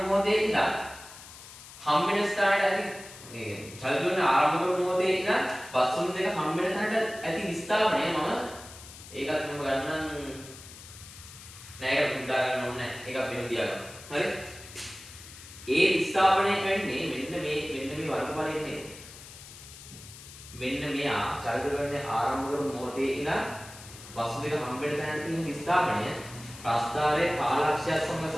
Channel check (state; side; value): noise; left; hiss, 16 dB below the sound